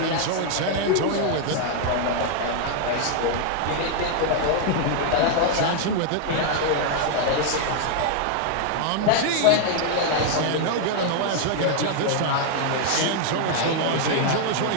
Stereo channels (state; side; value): different; both; correlation 0.00